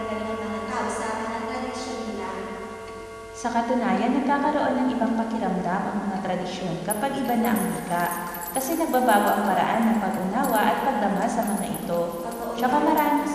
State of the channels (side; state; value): both; identical; correlation 1.00